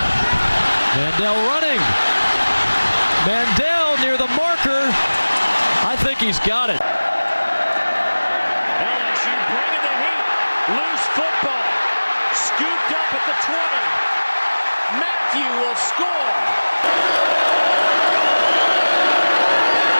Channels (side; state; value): both; inverted; correlation -1.00